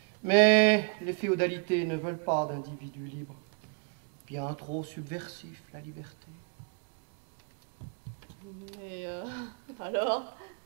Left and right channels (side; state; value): left; quieter; 35.7 dB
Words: Mais les féodalités ne veulent pas d'individus libres. Bien trop subversif, la liberté. Mais alors,